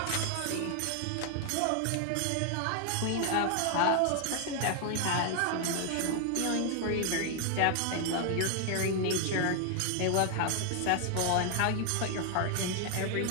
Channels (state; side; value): different; both; correlation 0.00